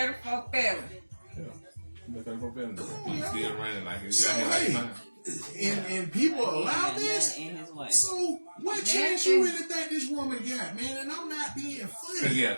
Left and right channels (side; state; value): both; inverted; correlation -1.00